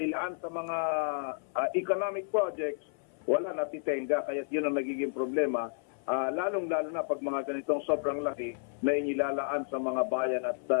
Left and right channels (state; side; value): silent; right; 57 dB below the other